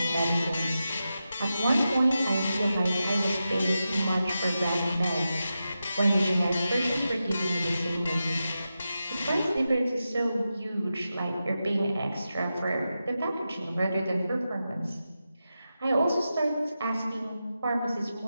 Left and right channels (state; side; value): inverted; both; correlation -0.90